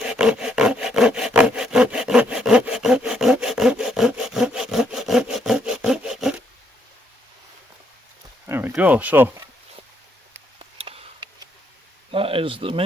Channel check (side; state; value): both; normal; correlation 0.73